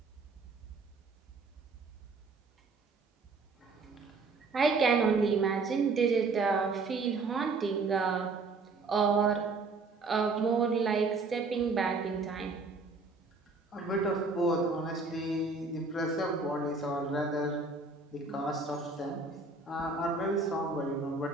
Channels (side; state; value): left; quieter; 3.9 dB